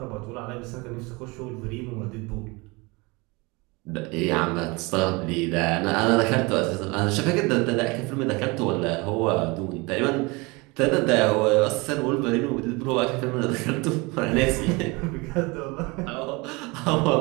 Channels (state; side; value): quieter; left; 25.9 dB